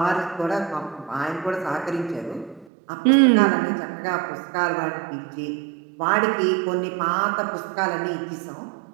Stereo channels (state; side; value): drops out; left; at 2.7 s